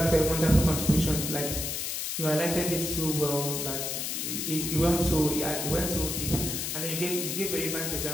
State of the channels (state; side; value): noise; left; hiss, 2 dB below the sound